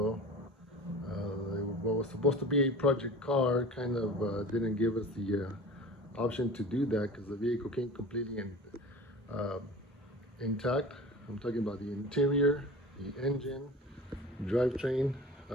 What was supposed to be a project car kind of didn't give us the option to do that because the vehicle came completely uh, intact. I'm talking about the interior, the engine, drivetrain,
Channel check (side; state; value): both; normal; correlation 0.36